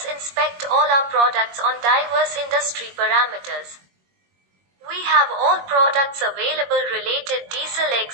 inspect all our products on diverse industry parameters. We have all products available related diesel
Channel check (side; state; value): left; late; 21 ms